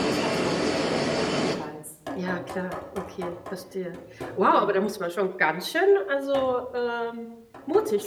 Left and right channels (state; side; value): identical; both; correlation 1.00